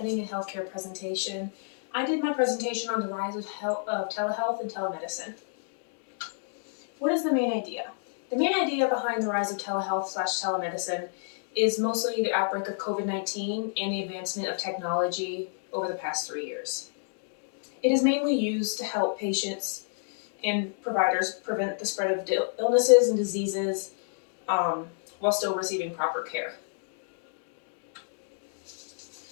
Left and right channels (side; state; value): right; silent; digital silence